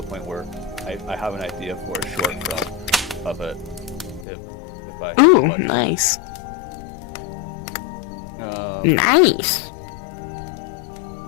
point where I have an idea for a short film of it, if I have Ooh, the budget. nice. Um, Nice.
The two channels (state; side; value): drops out; right; at 4.2 s